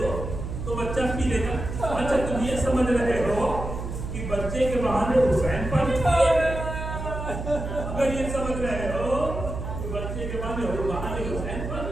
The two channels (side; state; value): right; noise; hum, 6 dB below the sound